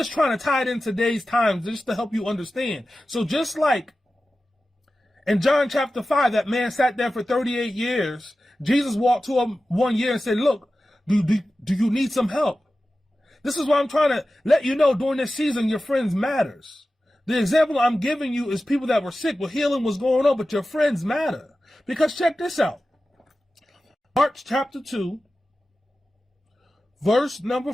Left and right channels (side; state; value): both; normal; correlation 0.94